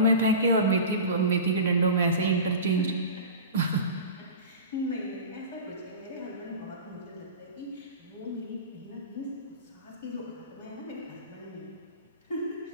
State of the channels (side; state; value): both; inverted; correlation -0.31